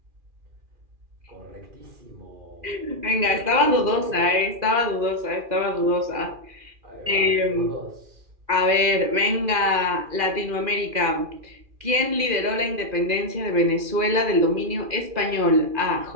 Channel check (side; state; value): left; late; 2.4 ms